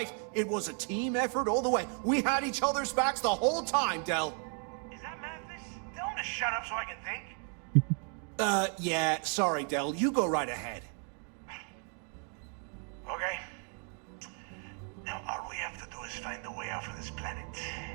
It was a team effort all the way. We had each other's backs the whole time, Del. Is that Mathis? Tell him to shut up so I can think. Yeah, sorry, Del. You go right ahead. Okay.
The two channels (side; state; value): left; quieter; 39.4 dB